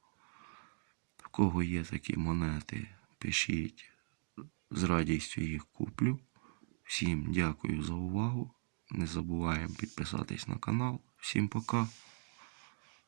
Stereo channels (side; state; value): left; silent; digital silence